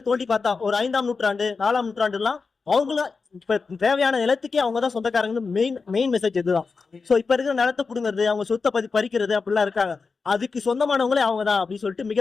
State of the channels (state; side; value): quieter; right; 4.6 dB